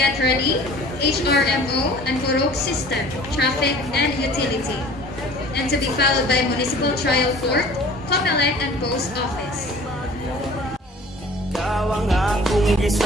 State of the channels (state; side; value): normal; both; correlation 0.47